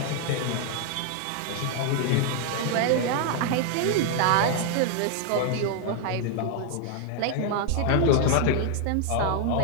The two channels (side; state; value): both; different; correlation 0.00